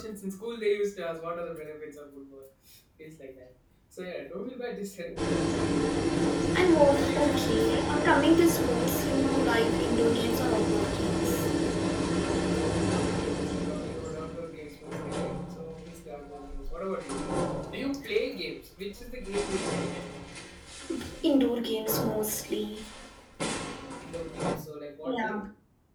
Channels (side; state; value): both; identical; correlation 1.00